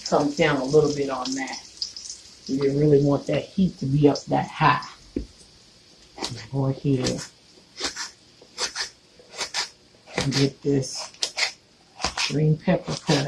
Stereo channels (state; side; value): identical; both; correlation 1.00